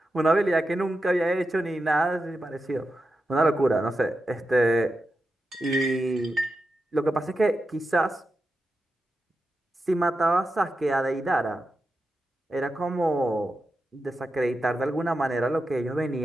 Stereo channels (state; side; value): normal; both; correlation 0.90